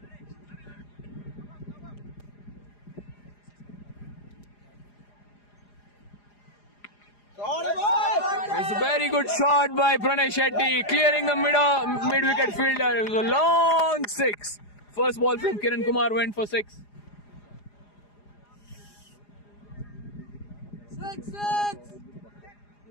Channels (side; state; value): right; late; 4.9 ms